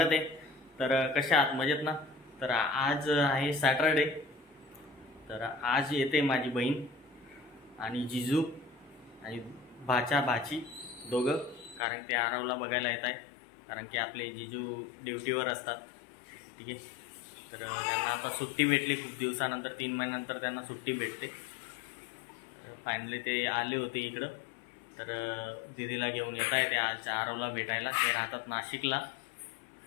आहे। तर कशा आहात, मजेत ना? तर आज आहे सॅटरडे। तर आज येते माझी बहीण आणि जिजू आणि भाची दोघं, कारण ते आरवला बघायला येत आहे, कारण की आपले जिजू ड्युटीवर असतात। ठीक आहे, तर त्यांना आता सुट्टी भेटली खूप दिवसानंतर, 3 महिन्यानंतर त्यांना सुट्टी भेटते। फायनली ते आले होते इकडं, तर दीदीला घेऊन येत आहे ते आज आरवला भेटायला। ते राहतात नाशिकला।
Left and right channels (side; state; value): right; drops out; at 11.8 s